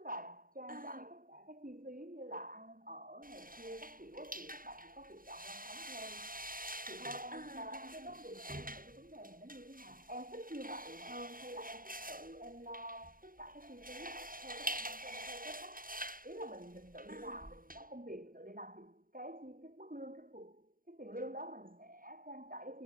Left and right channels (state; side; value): late; left; 0.41 ms